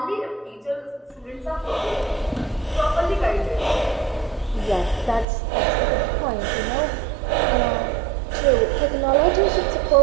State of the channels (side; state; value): left; drops out; at 5.2 s